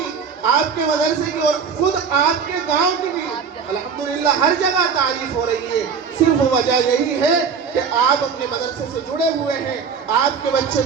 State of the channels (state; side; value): quieter; left; 6.1 dB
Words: آپ کے مدرسے کی اور خود آپ کے گاؤں کی بھی الحمدللہ ہر جگہ تعریف ہو رہی ہے۔ صرف وجہ یہی ہے کہ آپ اپنے مدرسے سے جڑے ہوئے ہیں، آپ کے بچے